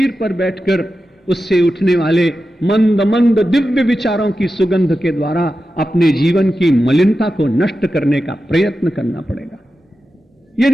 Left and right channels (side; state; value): both; normal; correlation 0.92